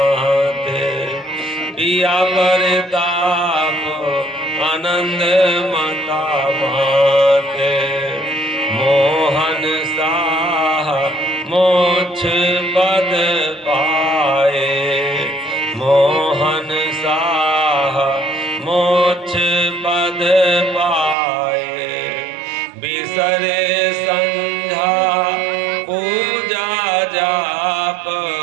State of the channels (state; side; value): drops out; left; at 21.2 s